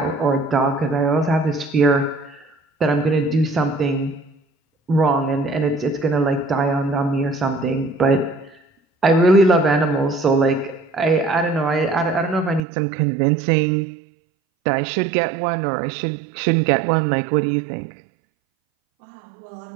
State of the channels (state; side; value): drops out; left; at 12.6 s